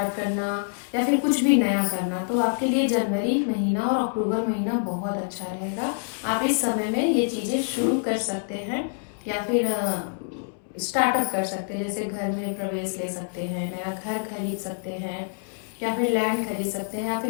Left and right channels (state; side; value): silent; right; 61 dB below the other